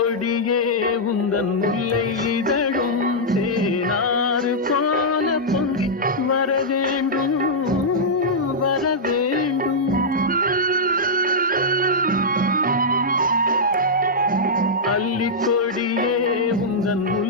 உந்தன் முல்லை இதழும் தேனாறு போல பொங்கி வர வேண்டும் வர வேண்டும். அல்லிக்கொடியே உந்தன்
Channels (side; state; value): both; normal; correlation -0.08